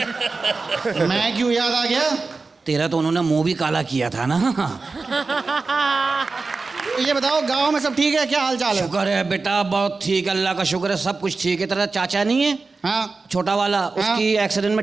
मैं क्यों याद आ गया? तेरा तो उन्होंने मुंह भी काला किया था ना। ये बताओ गांव में सब ठीक है? क्या हाल चाल है? शुक्र है बेटा, बहुत ठीक, अल्लाह का शुक्र है, सब कुछ ठीक है। तेरा चाचा नहीं है? हाँ छोटा वाला, उसकी एक्सीडेंट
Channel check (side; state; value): left; quieter; 4.0 dB